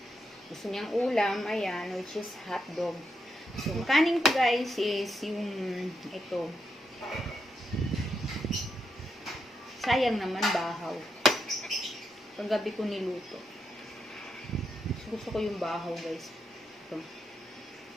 gusto niyang ulam. Ayan, which is hotdog. So, ang kanin ko guys is yung ito. Sayang naman bahaw. Paggabi ko niluto. Gusto ko yung bahaw guys. Ito.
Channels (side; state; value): both; normal; correlation 0.82